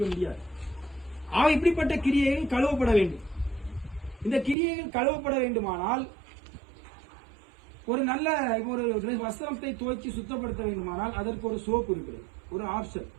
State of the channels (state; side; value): drops out; left; at 4.5 s